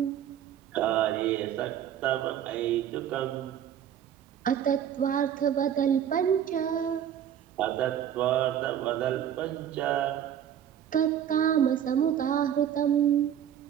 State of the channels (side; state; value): left; quieter; 9.8 dB